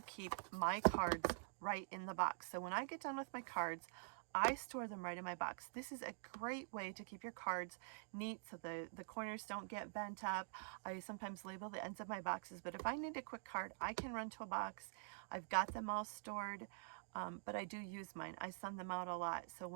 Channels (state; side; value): silent; left; digital silence